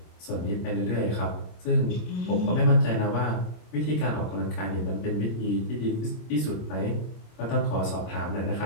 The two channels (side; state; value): right; late; 26 ms